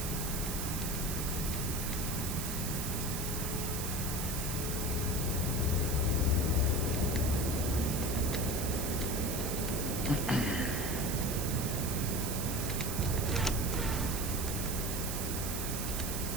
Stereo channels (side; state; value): right; noise; hiss, 4 dB below the sound